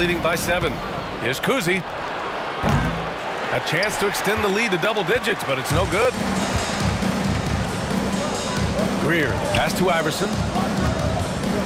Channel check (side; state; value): both; identical; correlation 1.00